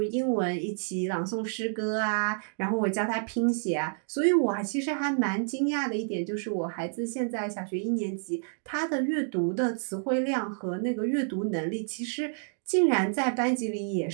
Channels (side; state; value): left; silent; digital silence